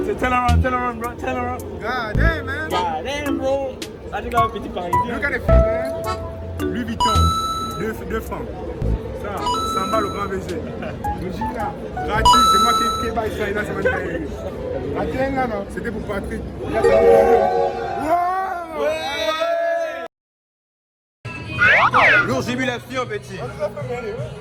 C'est turn around, bro. Turn around. God damn, man. God damn, bro. Ah, tu as un petit parisien. Look at the feet, man. Louis Vuitton, 2 francs. Ça, 100 balles au grand baiser. Le jean là, gratuit, c'est moi qui baille ça, là, c'est moi qui baille. La tienne là, non, c'était pour Patrick. Là, c'est pour ouais. Lourd jubilation, petit.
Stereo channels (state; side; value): identical; both; correlation 1.00